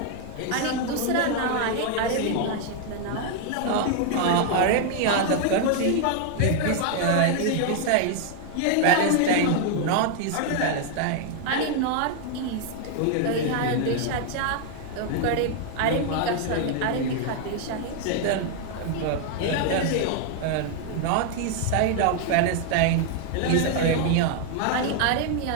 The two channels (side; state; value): both; different; correlation 0.00